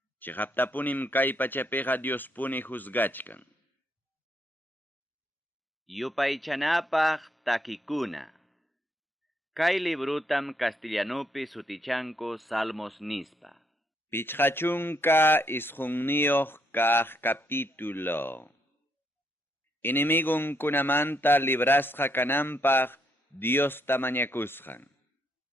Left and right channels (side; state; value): both; normal; correlation 0.74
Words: Chiqaptapunim kay pachapiqa Diospuni juzgachkan. Yupaychanapaq takikuna. Kay librutam castellanupi sutichanko Salmos nispa. Pichqachunka isqunniyoq kaq capítulo. Inimigukunamanta librasqa kananpaq Dios tamañakusqan.